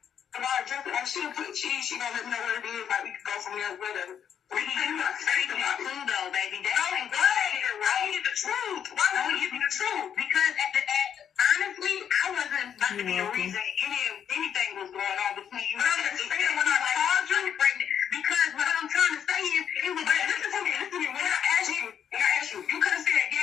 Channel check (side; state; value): right; quieter; 8.6 dB